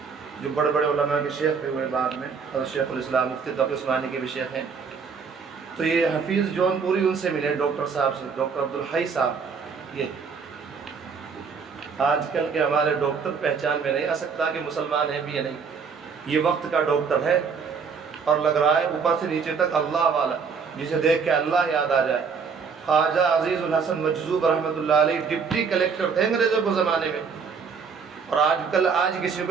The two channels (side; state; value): left; quieter; 5.7 dB